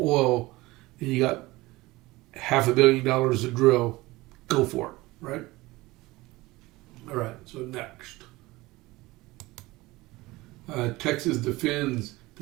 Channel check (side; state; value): left; quieter; 20.3 dB